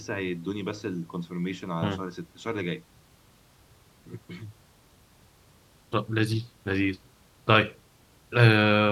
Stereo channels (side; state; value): both; identical; correlation 1.00